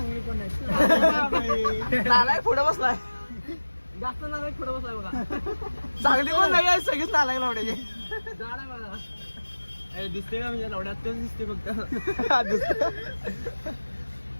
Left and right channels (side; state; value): both; inverted; correlation -1.00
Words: पण आहे नालायक पुढे बसलाय जास्त नालायक पुढे बसलाय बघा चांगली पण नाही आहे सगळीच नालायक लावड्याचे झाड आहे बघा दिसते का म्हणजे लावड्यात तेच दिसते फक्त